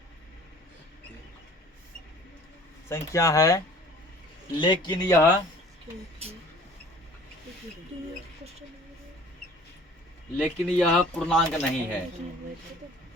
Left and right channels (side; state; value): both; normal; correlation 0.49